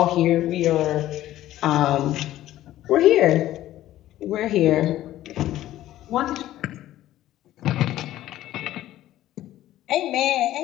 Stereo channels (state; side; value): quieter; right; 14.0 dB